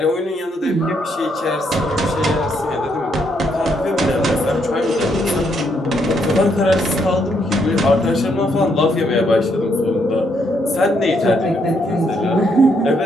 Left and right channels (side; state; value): both; normal; correlation 0.74